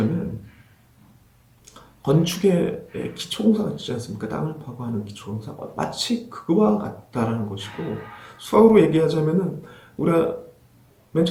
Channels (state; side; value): identical; both; correlation 1.00